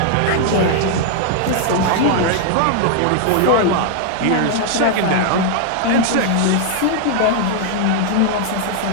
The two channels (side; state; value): both; different; correlation 0.00